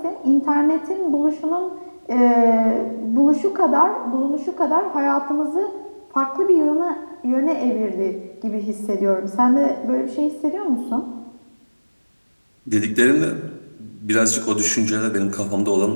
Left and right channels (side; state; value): both; inverted; correlation -1.00